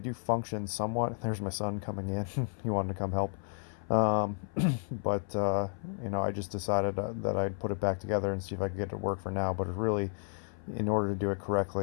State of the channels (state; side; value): silent; right; 56 dB below the other